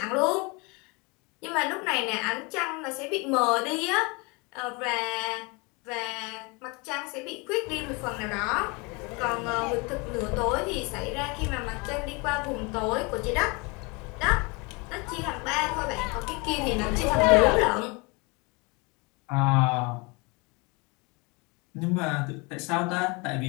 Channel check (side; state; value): right; quieter; 28.5 dB